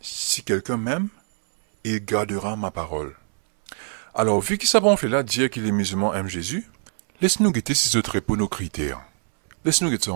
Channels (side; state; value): left; silent; 63 dB below the other